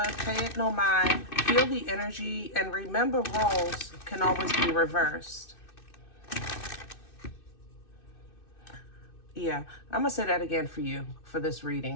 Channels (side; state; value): right; late; 2.6 ms